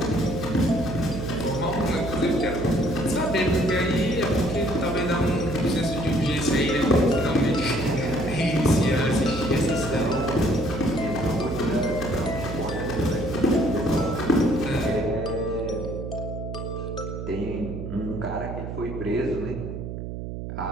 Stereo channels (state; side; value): noise; right; hum, 7 dB below the sound